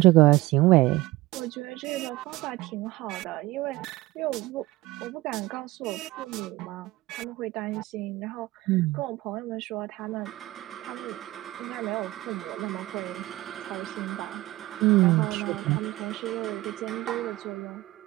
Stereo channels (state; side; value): quieter; left; 18.7 dB